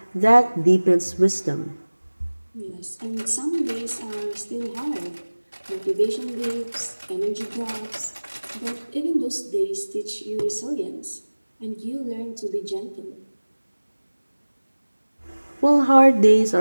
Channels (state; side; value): inverted; both; correlation -1.00